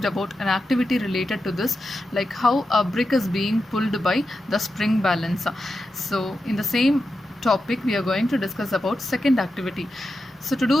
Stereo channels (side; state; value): both; normal; correlation 0.89